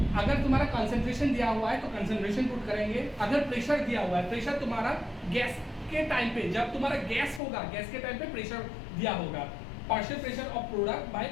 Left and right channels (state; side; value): drops out; right; at 7.4 s